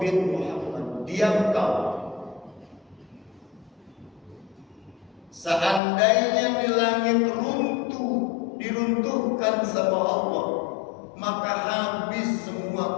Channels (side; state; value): right; drops out; at 5.8 s